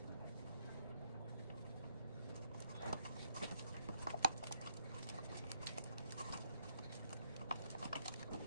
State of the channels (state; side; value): inverted; both; correlation -0.75